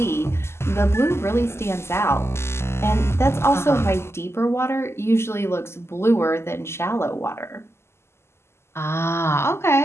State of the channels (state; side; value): late; right; 0.12 ms